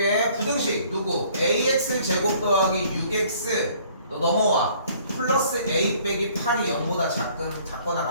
부등식 누구? ax 제곱 더하기 6x 너 넘어와. 플러스 a 빼기 8이 0보다 작거나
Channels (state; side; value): inverted; both; correlation -0.58